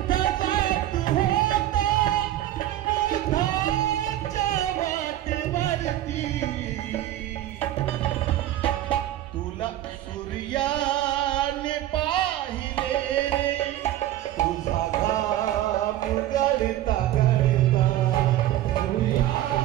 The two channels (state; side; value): quieter; left; 13.5 dB